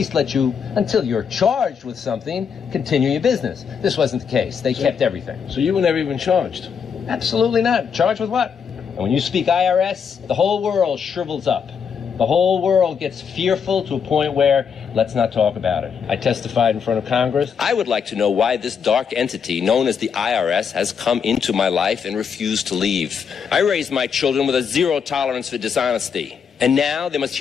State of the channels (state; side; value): quieter; right; 6.7 dB